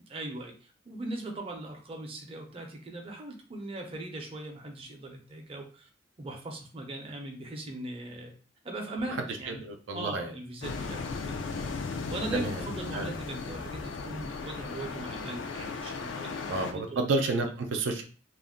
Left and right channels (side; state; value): both; normal; correlation 0.36